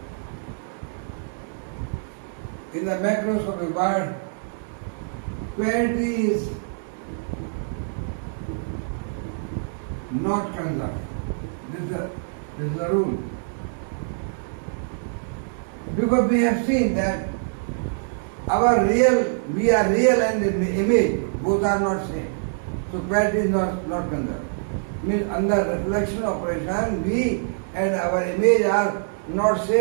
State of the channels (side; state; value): left; silent; digital silence